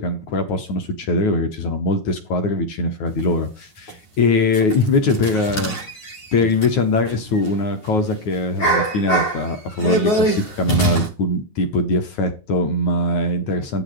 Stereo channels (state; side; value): late; right; 9.4 ms